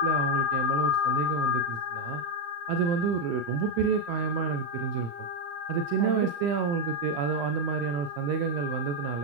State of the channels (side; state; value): left; late; 35 ms